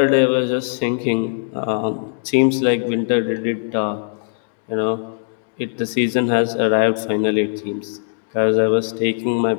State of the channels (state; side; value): silent; right; digital silence